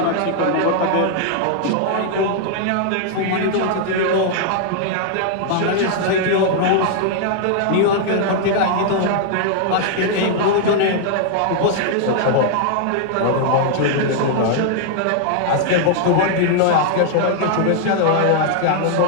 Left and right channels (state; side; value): different; both; correlation -0.01